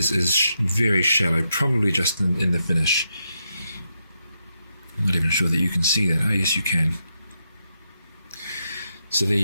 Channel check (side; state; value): both; inverted; correlation -0.82